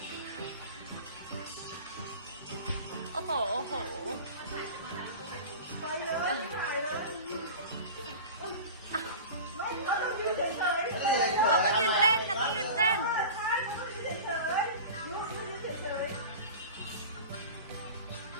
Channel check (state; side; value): inverted; both; correlation -0.34